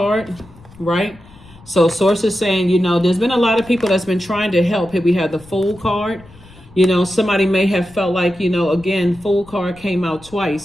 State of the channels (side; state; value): left; noise; rumble, 23 dB below the sound